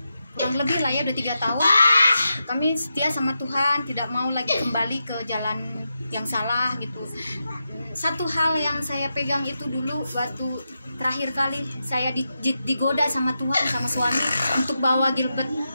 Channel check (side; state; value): both; inverted; correlation -0.88